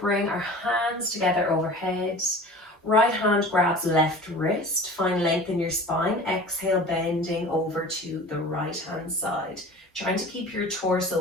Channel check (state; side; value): normal; both; correlation 0.39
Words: our hands together overhead. Right hand grabs left wrist, find length in your spine. Exhale, bending over to the right hand side. Trying to keep your